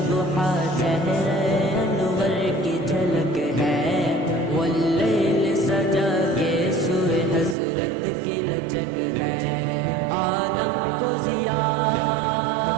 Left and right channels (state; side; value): drops out; left; at 7.6 s